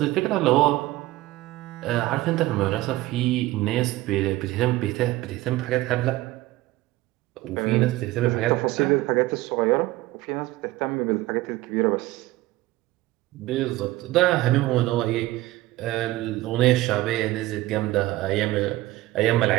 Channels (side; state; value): left; quieter; 17.5 dB